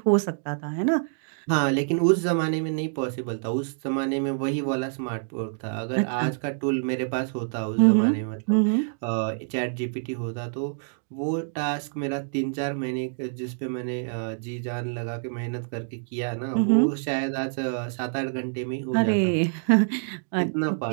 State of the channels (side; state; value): left; silent; digital silence